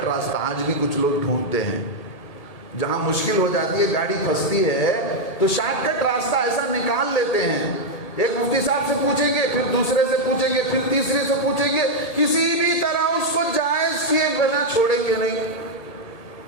راستہ آج بھی کچھ لوگ ڈھونڈتے ہیں، جہاں مشکل ہو جاتی ہے، گاڑی پھنستی ہے تو شارٹ کٹ راستہ ایسا نکال لیتے ہیں۔ ایک مفتی صاحب سے پوچھیں گے، پھر دوسرے سے پوچھیں گے، پھر تیسرے سے پوچھیں گے، کسی بھی طرح اس کو جائز کیے بنا چھوڑیں گے نہیں۔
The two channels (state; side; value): late; right; 1.8 ms